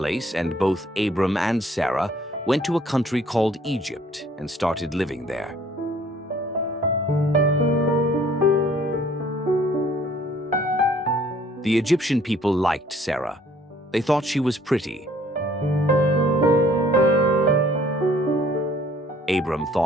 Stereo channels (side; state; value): both; normal; correlation 0.58